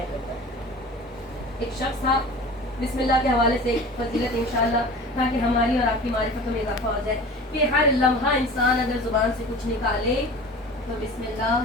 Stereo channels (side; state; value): both; normal; correlation 0.38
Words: کرتا ہے. ایک شخص تھا، بسم اللہ کے حوالے سے فضیلت انشاءاللہ تاکہ ہماری اور آپ کی معرفت میں اضافہ ہو جائے کہ ہر لمحہ انسان اگر زبان سے کچھ نکالے تو بسم